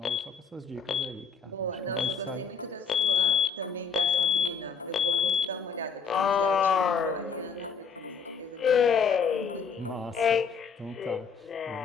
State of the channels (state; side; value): quieter; right; 5.8 dB